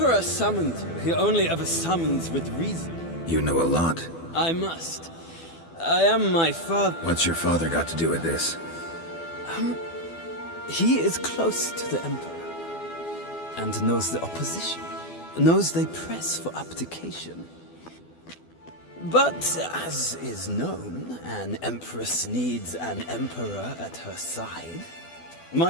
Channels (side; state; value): right; late; 12 ms